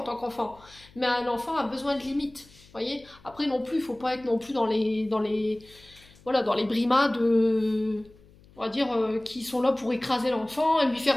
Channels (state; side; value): noise; left; hum, 26 dB below the sound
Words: tant qu'enfant. Mais un enfant a besoin de limites, voyez. Après non plus, il ne faut pas être non plus dans les brimades, on va dire, qui sont là pour écraser l'enfant et lui